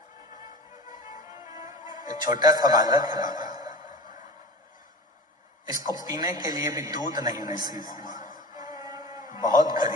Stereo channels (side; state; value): both; normal; correlation 0.34